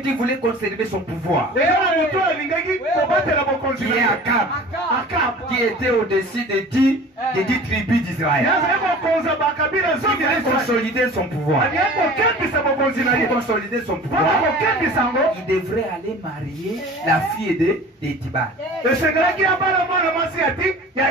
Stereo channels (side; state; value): both; normal; correlation 0.42